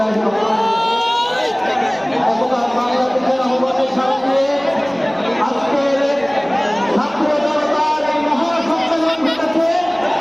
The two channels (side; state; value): right; noise; hum, 29 dB below the sound